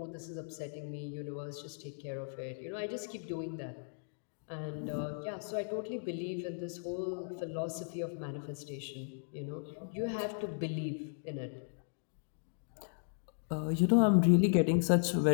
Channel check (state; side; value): silent; right; digital silence